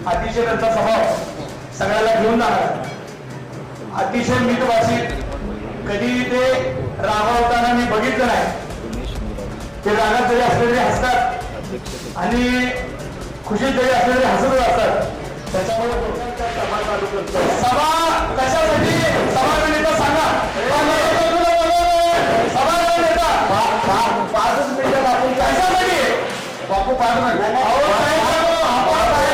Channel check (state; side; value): identical; both; correlation 1.00